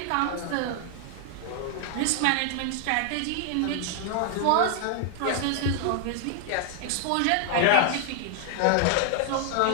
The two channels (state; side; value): different; both; correlation 0.00